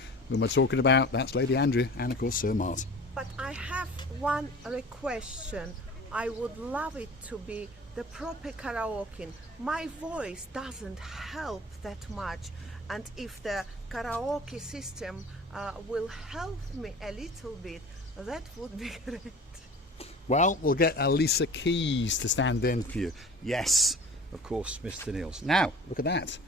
Who am I talking about? That's Lady Andrea and of course Sir Mart. But I have one request. I would love it to be the proper karaoke. My voice doesn't help that much, and if the karaoke system will help me a little bit, that would be great. Well, we'll get Elisa Keys to stand in for you. Yes, of course, Mr. Niels. Now, look at that.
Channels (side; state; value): both; normal; correlation 0.41